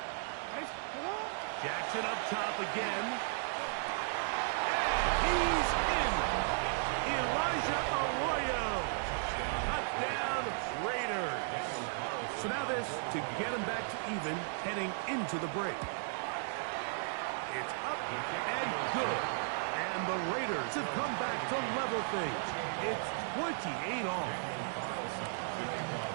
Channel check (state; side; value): silent; left; digital silence